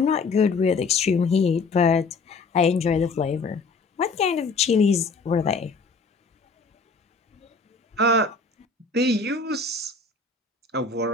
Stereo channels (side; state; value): right; quieter; 4.1 dB